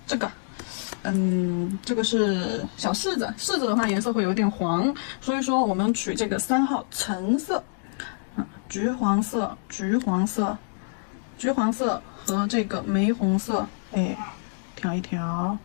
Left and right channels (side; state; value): right; silent; digital silence